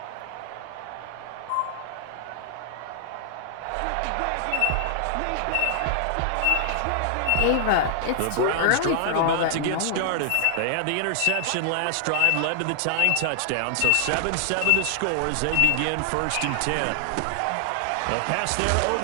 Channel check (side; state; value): both; different; correlation 0.00